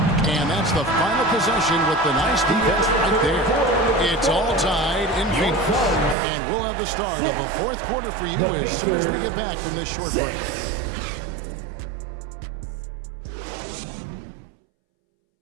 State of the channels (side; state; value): left; drops out; at 6.2 s